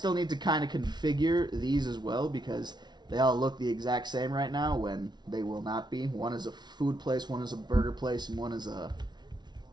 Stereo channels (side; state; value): left; late; 0.20 ms